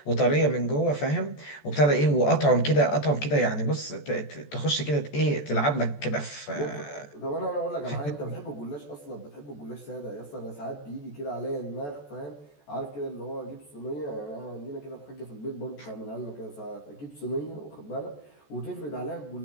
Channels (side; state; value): right; late; 14 ms